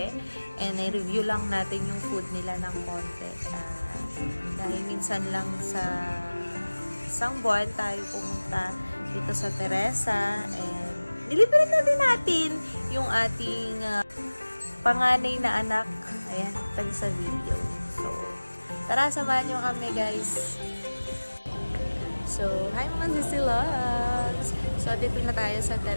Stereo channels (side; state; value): both; inverted; correlation -1.00